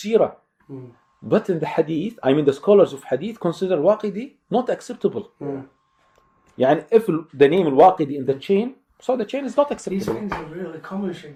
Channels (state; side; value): identical; both; correlation 1.00